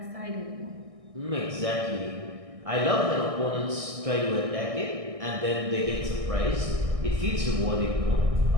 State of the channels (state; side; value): late; left; 1.6 ms